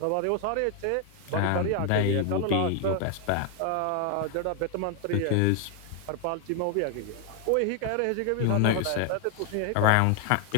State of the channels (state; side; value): different; both; correlation 0.00